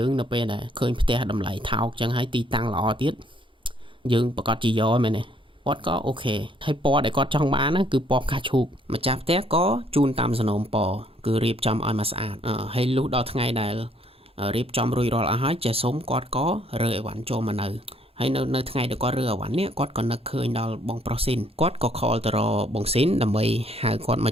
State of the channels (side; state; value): both; normal; correlation 0.65